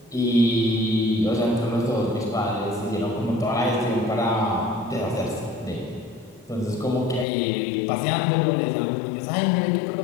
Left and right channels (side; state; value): right; drops out; at 7.2 s